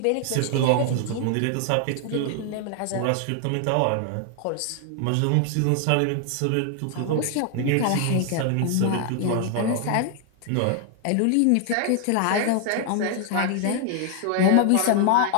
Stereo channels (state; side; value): different; both; correlation 0.00